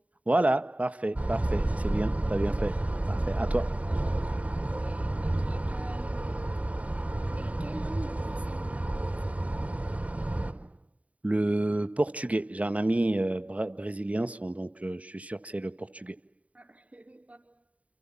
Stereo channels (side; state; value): left; late; 0.068 ms